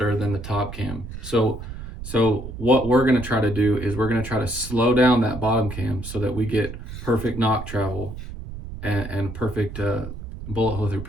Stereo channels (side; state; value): right; noise; rumble, 10 dB below the sound